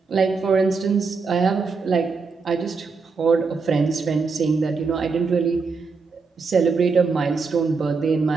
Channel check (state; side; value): quieter; left; 4.7 dB